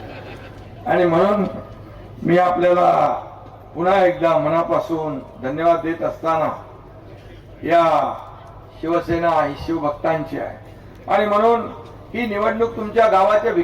आणि म्हणून मी आपल्याला पुन्हा एकदा मनापासून धन्यवाद देत असताना या शिवसेना ही शिवभक्तांची आहे. आणि म्हणून ही निवडणूक तुमच्या गावाच्या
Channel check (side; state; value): both; identical; correlation 1.00